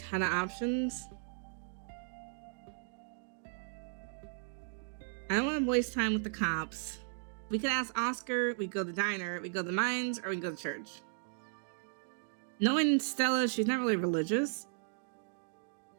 of options. I don't want to waste time with the cops. We could ask Oscar, we go to the diner, we go to the mines, or we go to church. Knowing Stella, she's not really religious.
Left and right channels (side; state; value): left; silent; digital silence